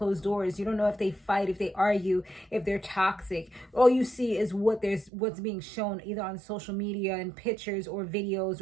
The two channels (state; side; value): drops out; left; at 5.1 s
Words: doors. You don't know if they fight, if they argue, if they're toxic. All you see is what's being shown either on social media and pictures or videos